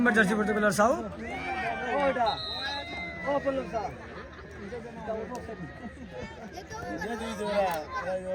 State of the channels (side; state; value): both; identical; correlation 1.00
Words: জার্সি পড়তে গেল সাউথ।